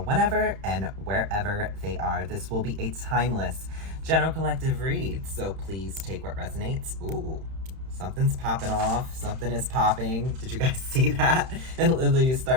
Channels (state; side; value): late; left; 31 ms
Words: whenever and wherever they are. This will be a timeless general collective read, so please take what resonates. Ooh, something's popping off. Something is popping. Did you guys see that? It literally